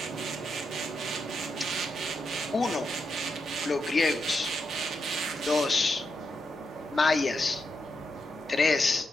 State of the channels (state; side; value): normal; both; correlation 0.84